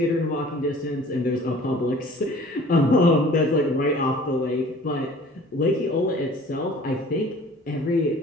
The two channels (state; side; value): normal; both; correlation 0.48